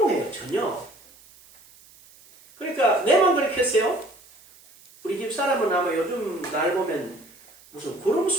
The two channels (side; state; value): right; noise; hiss, 26 dB below the sound